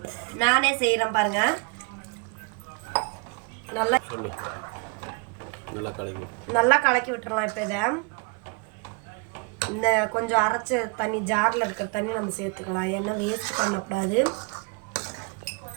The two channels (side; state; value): left; quieter; 28.8 dB